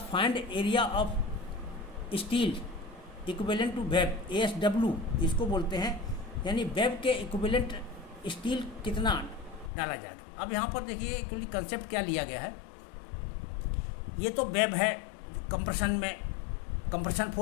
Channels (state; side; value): drops out; right; at 9.7 s